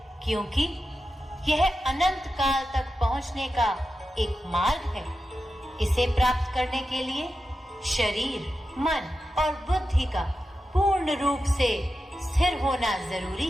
क्योंकि यह अनंत काल तक पहुंचने का एक मार्ग है। इसे प्राप्त करने के लिए शरीर, मन और बुद्धि का पूर्ण रूप से स्थिर होना जरूरी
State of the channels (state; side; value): normal; both; correlation 0.91